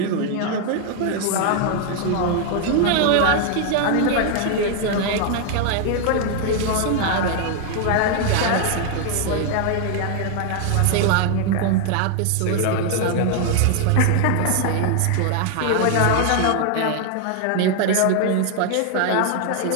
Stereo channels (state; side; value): different; both; correlation 0.00